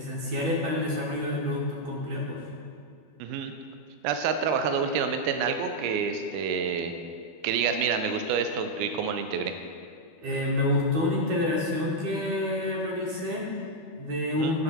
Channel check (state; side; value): late; left; 12 ms